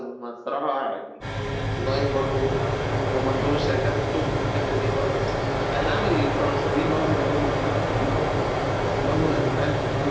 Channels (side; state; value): both; identical; correlation 1.00